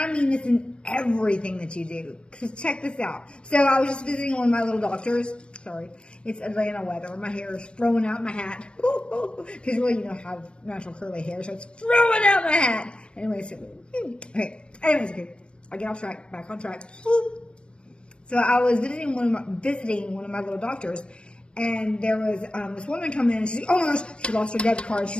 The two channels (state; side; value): late; right; 0.055 ms